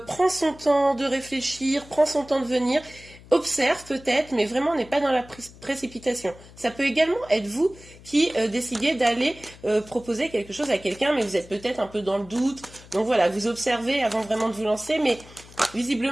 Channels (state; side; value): noise; left; hum, 21 dB below the sound